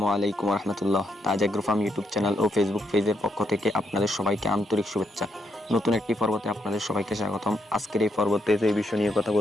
আলাইকুম রহমতুল্লাহ। তাজ agro farm YouTube channel ও Facebook পেজের পক্ষ থেকে আপনাদের সবাইকে আন্তরিক শুভেচ্ছা। নতুন একটি পর্বতে আপনাদের সবাইকে স্বাগতম। আজকের এই পর্বতে যে বিষয় নিয়ে কথা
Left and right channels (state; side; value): normal; both; correlation 0.78